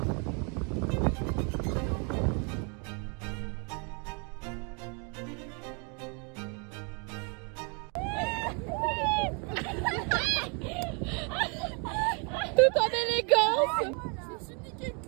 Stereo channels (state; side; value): quieter; left; 35.9 dB